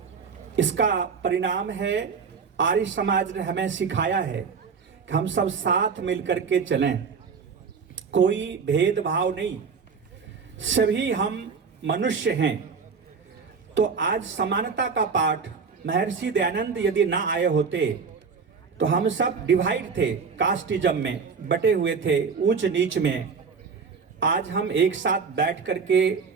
इसका परिणाम है आर्य समाज ने हमें सिखाया है कि हम सब साथ मिलकर के चलें, कोई भेदभाव नहीं, सभी हम मनुष्य हैं। तो आज समानता का पाठ महर्षि दयानंद यदि ना आए होते तो हम सब डिवाइड थे, कास्टिज्म में बटे हुए थे, ऊंच नीच में। आज हम एक साथ बैठ करके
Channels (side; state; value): left; quieter; 5.6 dB